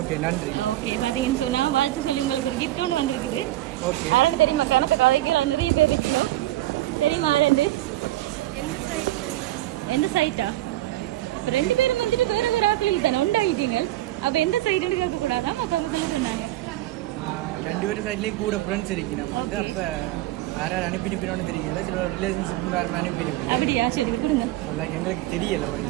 நன்றி. ஓகே, பாத்தீங்கன்னு சொன்னா வாழ்த்து சொல்லி உங்களுக்கு ஒரு கிஃப்ட் ஒன்று வந்திருக்குது. ஓகே. யாருன்னு தெரியுமா? கணக்கு கதைக்கு நிறைய பேர் இருக்கணும். தெரியுமா ரெண்டு? எந்த சைட்டா? ரெண்டு பேரும் வந்துட்டு வேற வேற ஆக்களில் தானே உண்டாயிட்டீங்க. அப்ப எந்த சைடுன்னு கேட்க கூடாதான் அப்ப அவங்க சொல்ல சொன்னாங்க. ரெண்டு பேரும் சைட்லயும் கூட ஃப்ரெண்ட்ஸ் இருக்கணும். அப்ப யாராவது அனுப்பிட்டு தெரியல, சில ரிலேஷன்ஷிப் வேற அனுப்பிட்டு. அப்படியா? சரி கொடுங்க. எங்களுக்கு தெரியல.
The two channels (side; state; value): left; quieter; 15.8 dB